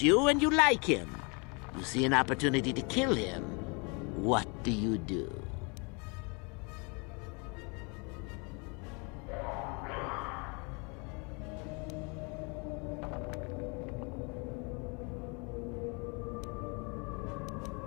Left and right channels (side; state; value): right; quieter; 32.1 dB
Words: you and you like him. You see an opportunity to kill him. What do you do?